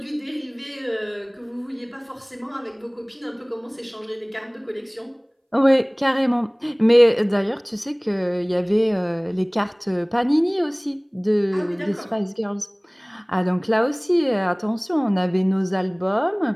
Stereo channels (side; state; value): both; identical; correlation 1.00